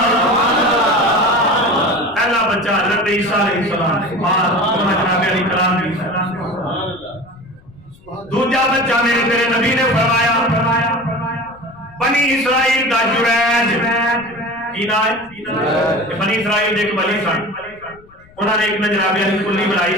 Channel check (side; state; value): left; noise; rumble, 26 dB below the sound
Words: پہلا بچہ حضرت عیسیٰ علیہ السلام ماں جناب علی کلام کی. دوسرا بچہ میرے تیرے نبی نے فرمایا بنی اسرائیل دا جریج کی نام ہے. بنی اسرائیل ایک ولی سن انہوں نے ایک جناب علی کلی